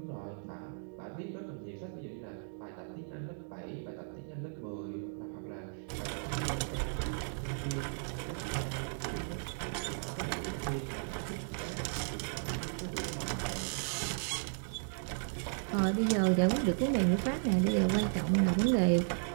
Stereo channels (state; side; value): silent; left; digital silence